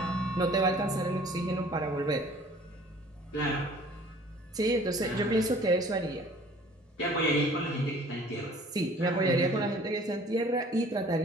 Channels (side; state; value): both; normal; correlation 0.51